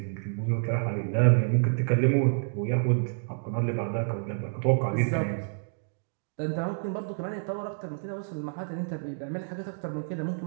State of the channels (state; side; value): silent; left; digital silence